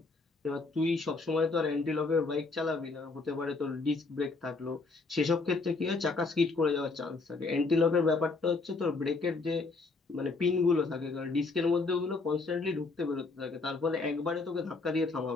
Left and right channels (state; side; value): quieter; right; 3.8 dB